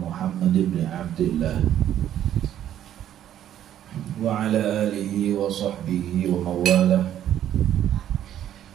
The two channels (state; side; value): quieter; left; 11.1 dB